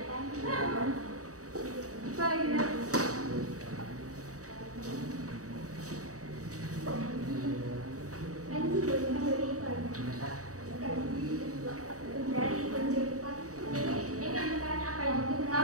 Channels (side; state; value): left; late; 0.66 ms